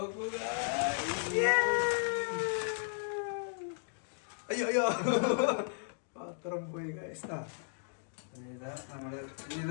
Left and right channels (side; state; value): right; silent; digital silence